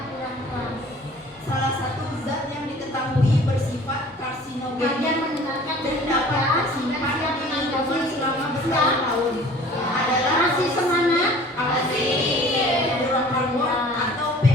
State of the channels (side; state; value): both; normal; correlation 0.48